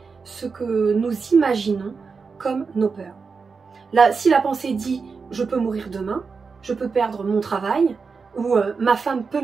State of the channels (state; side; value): quieter; left; 5.0 dB